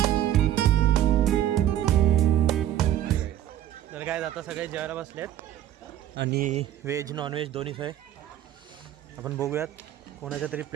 तर काय आता सगळे जेवायला बसलेत आणि व्हेज नॉन व्हेज दोन्ही सोय. आपण बघूयात कोणाच्या तरी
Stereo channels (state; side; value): quieter; left; 12.0 dB